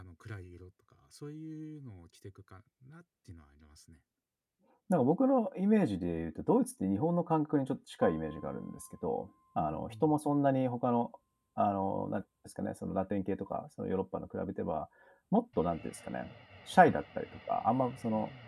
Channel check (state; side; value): identical; both; correlation 1.00